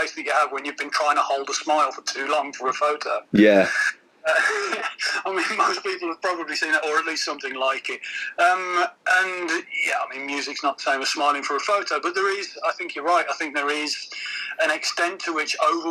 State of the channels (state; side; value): identical; both; correlation 1.00